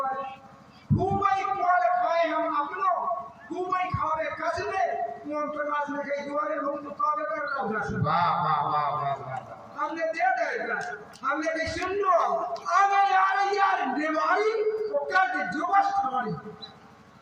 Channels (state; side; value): identical; both; correlation 1.00